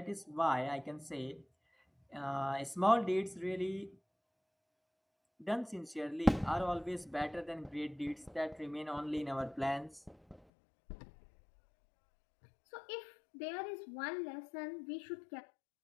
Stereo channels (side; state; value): right; drops out; at 10.4 s